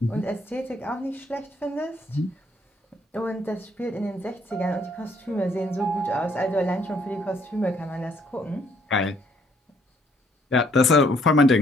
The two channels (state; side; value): normal; both; correlation 0.67